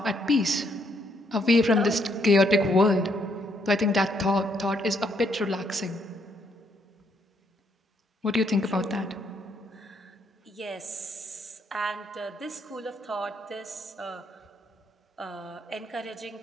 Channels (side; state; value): both; normal; correlation 0.72